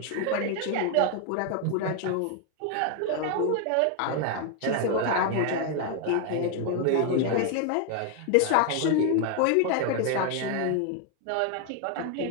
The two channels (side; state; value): both; different; correlation 0.01